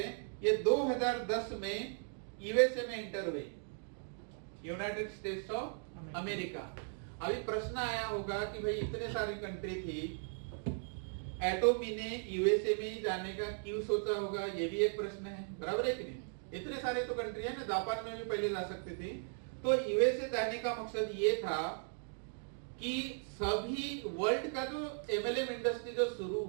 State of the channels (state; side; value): silent; left; 53 dB below the other